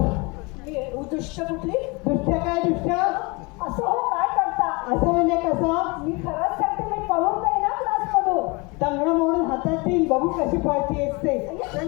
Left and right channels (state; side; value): quieter; right; 27.8 dB